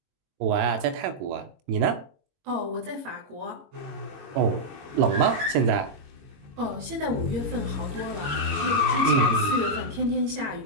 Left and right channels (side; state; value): left; late; 22 ms